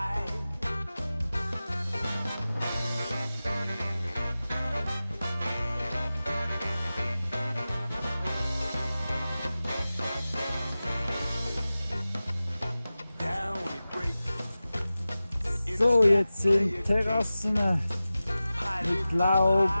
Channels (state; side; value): inverted; both; correlation -0.95